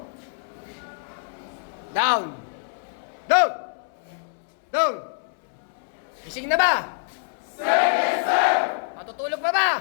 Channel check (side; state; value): right; silent; 61 dB below the other